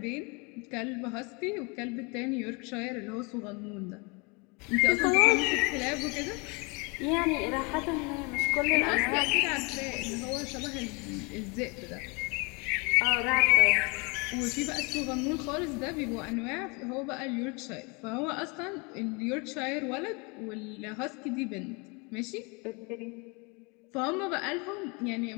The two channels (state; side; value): quieter; right; 30.0 dB